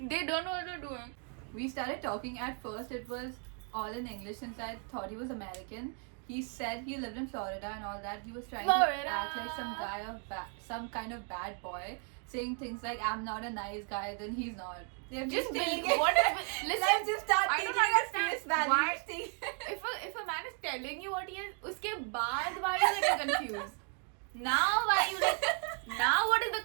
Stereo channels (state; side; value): quieter; left; 39.9 dB